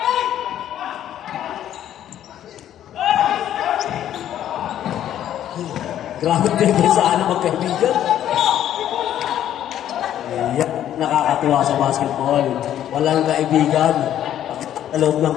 Grabe depensahan ng magkaibigan. Yeah, nakakatuwa sa basketball. Walang kaibigan sa loob ng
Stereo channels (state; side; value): quieter; right; 11.2 dB